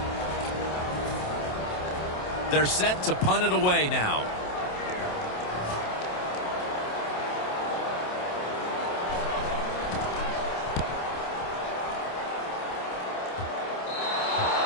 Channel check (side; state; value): right; late; 27 ms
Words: They're set to punt it away now.